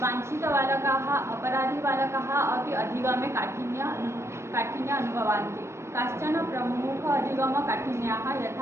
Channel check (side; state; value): left; late; 0.13 ms